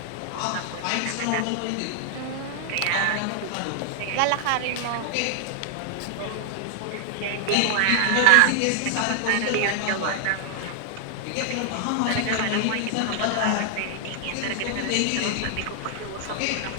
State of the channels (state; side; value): different; both; correlation 0.00